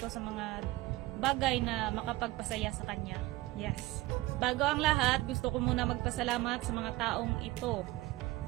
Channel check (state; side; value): quieter; left; 18.9 dB